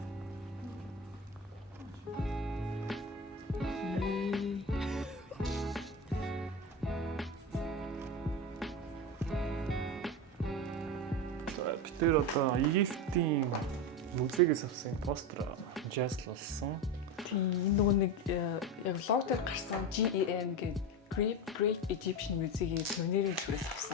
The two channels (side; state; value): both; normal; correlation 0.20